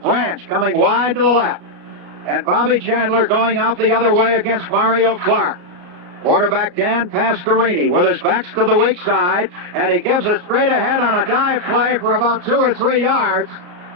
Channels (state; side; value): late; left; 34 ms